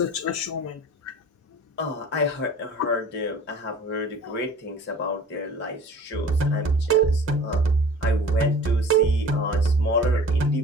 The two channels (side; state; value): both; normal; correlation 0.44